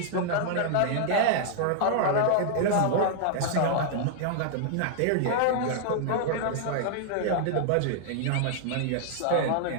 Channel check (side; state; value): both; different; correlation -0.01